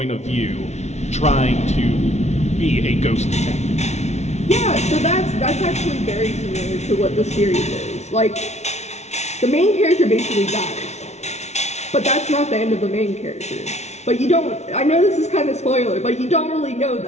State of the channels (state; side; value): late; right; 0.32 ms